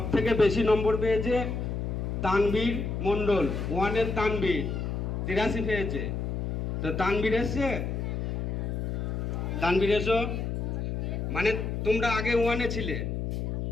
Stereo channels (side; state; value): left; noise; hum, 2 dB below the sound